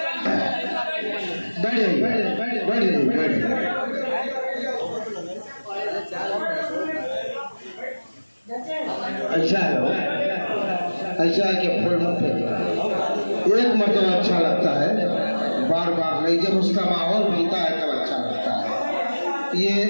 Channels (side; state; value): both; inverted; correlation -1.00